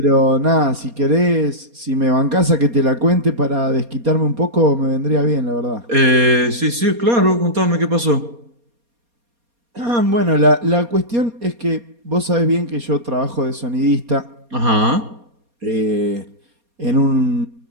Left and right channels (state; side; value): late; left; 4.2 ms